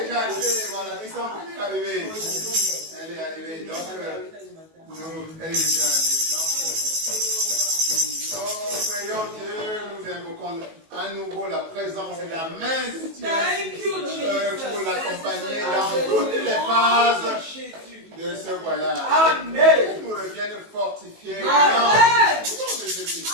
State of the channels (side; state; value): left; late; 19 ms